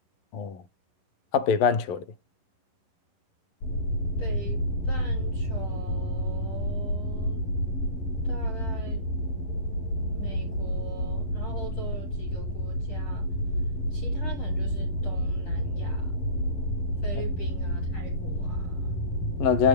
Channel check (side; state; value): right; late; 11 ms